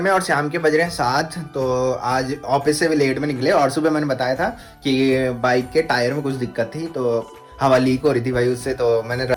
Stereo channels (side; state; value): both; identical; correlation 1.00